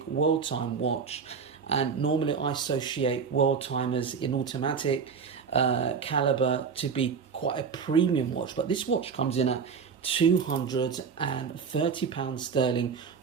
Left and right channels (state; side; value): quieter; left; 6.0 dB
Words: world time watch. And normally I associate world timers in automatic caliber to be quite a premium watch. But this watch comes in at £230 sterling